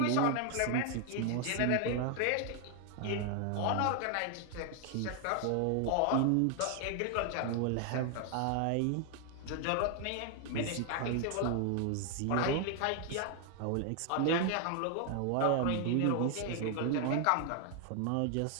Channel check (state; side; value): different; both; correlation 0.00